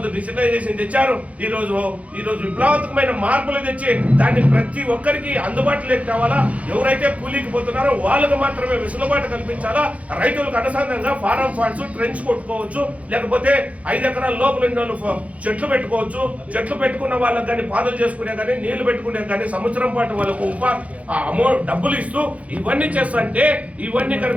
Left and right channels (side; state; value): left; late; 0.066 ms